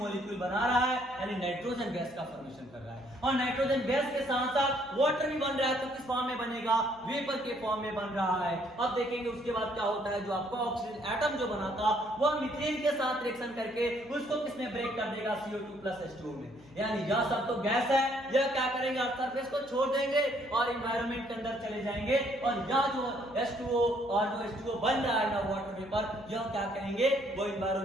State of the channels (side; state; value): left; noise; hum, 25 dB below the sound